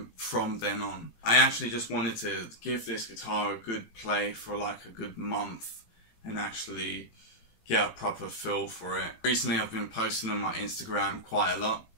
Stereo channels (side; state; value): right; late; 18 ms